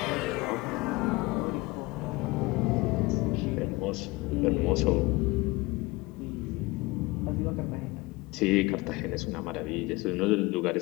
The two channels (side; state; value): right; quieter; 22.7 dB